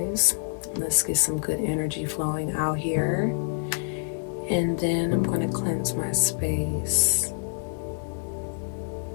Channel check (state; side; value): silent; right; 60 dB below the other